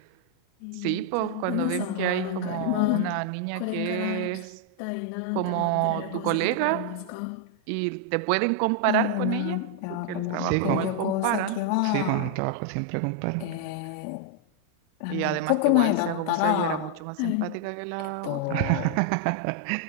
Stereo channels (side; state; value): both; different; correlation 0.00